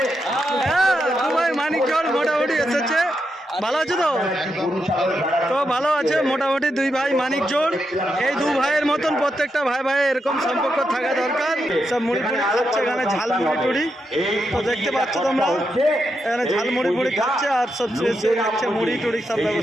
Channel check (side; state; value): both; normal; correlation 0.84